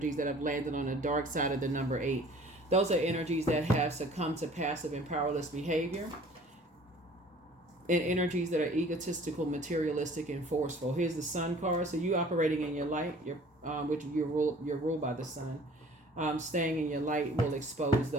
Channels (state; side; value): normal; both; correlation 0.50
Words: that have landed on the dark side of the number 8. Those are energies that have succumbed to passive and powerless behavior, and energies that are egotistical, materialistic, and forceful. Here's the Sun card. So you operating in your light, which you're ruled by the Sun. Staying in your light will expose